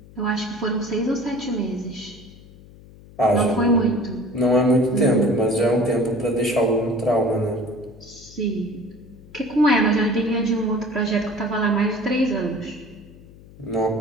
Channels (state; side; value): noise; left; hum, 21 dB below the sound